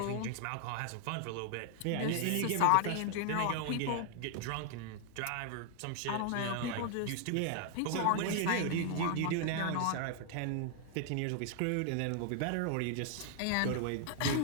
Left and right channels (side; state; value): both; different; correlation 0.00